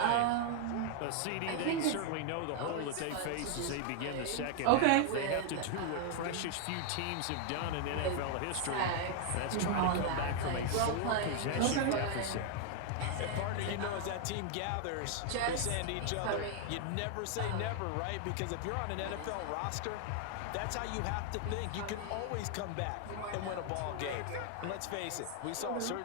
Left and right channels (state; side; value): different; both; correlation 0.00